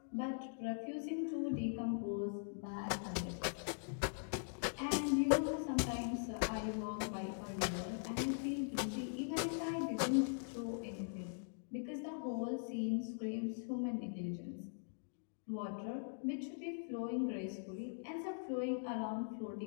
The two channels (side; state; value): right; silent; digital silence